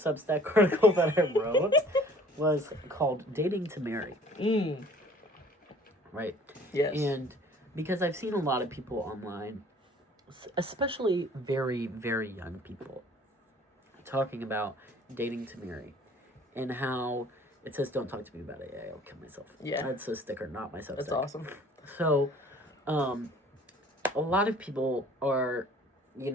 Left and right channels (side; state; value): both; normal; correlation 0.52